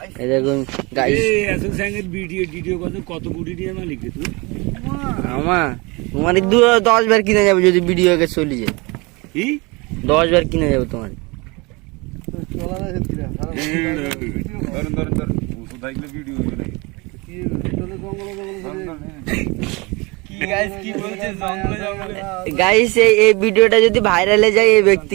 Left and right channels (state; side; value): quieter; left; 26.4 dB